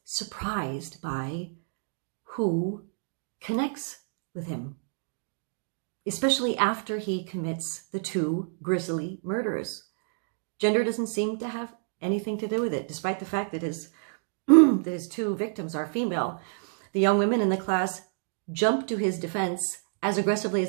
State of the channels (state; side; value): silent; left; digital silence